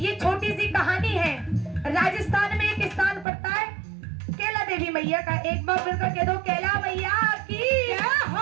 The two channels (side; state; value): left; drops out; at 3.2 s